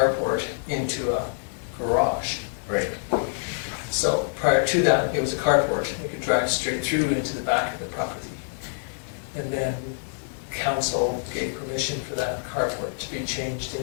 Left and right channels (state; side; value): silent; right; digital silence